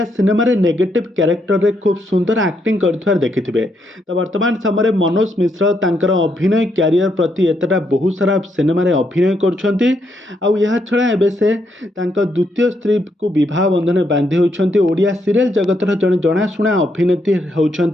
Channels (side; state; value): both; normal; correlation 0.77